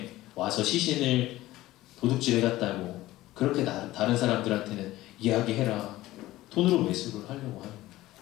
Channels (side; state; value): right; quieter; 16.6 dB